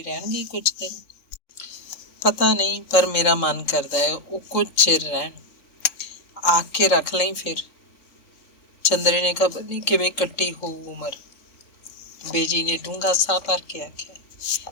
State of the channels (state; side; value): late; right; 3.6 ms